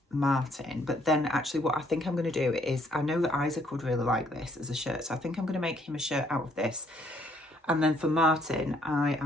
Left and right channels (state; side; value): normal; both; correlation 0.67